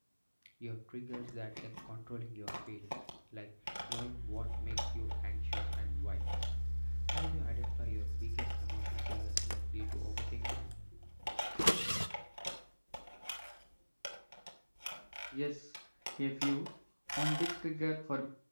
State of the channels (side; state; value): both; inverted; correlation -1.00